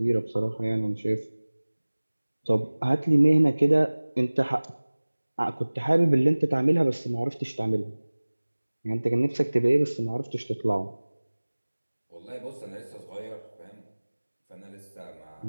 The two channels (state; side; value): inverted; both; correlation -1.00